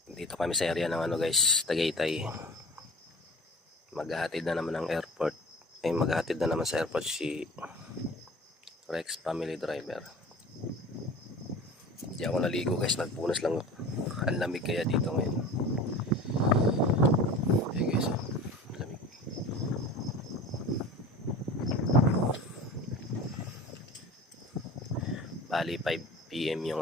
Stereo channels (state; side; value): normal; both; correlation 0.39